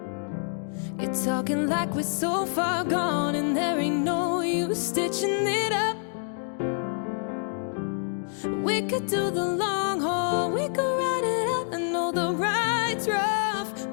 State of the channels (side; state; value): right; silent; 56 dB below the other